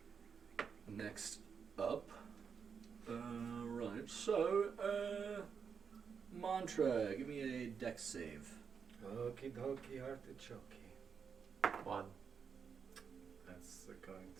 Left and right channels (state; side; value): quieter; left; 6.4 dB